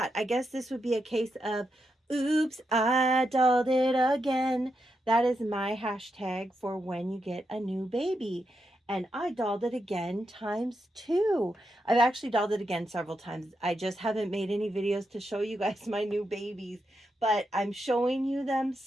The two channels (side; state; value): both; normal; correlation 0.84